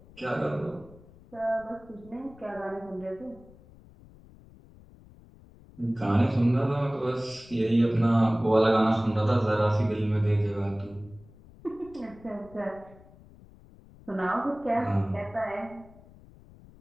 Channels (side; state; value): left; noise; rumble, 23 dB below the sound